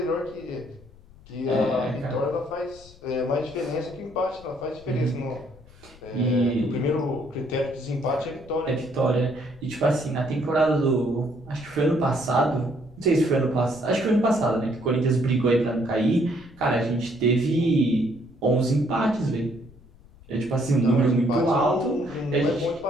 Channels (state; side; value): noise; left; rumble, 24 dB below the sound